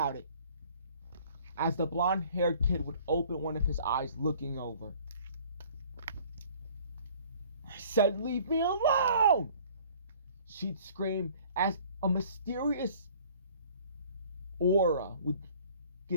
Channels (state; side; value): inverted; both; correlation -0.53